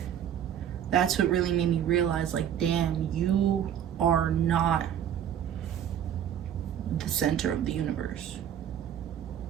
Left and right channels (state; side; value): quieter; left; 9.8 dB